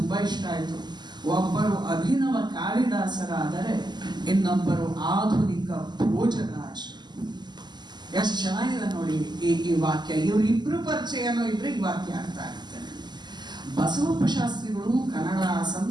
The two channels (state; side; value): late; left; 0.21 ms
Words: ಇಷ್ಟ ಆಯಿತು, ಒಬ್ಬರು ಅಭಿನವ ಕಾಳಿದಾಸರಾದರೆ ಇನ್ನೊಬ್ಬರು ಆಧುನಿಕ ಭೋಜರಾಜರು. ಎಷ್ಟು ಚೆನ್ನಾಗಿದೆ ನೋಡಿ ಈ ವಾಕ್ಯ. ಇವರಿಬ್ರು ಪರಿಚಯನೂ ಇದ್ರೆ ಈ ವಾಕ್ಯ ಅರ್ಥ ಆಗುತ್ತೆ. ಬಸವಪ್ಪ ಶಾಸ್ತ್ರಿಗಳು ಕನ್ನಡ,